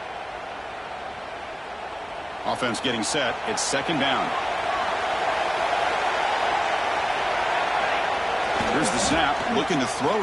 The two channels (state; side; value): identical; both; correlation 1.00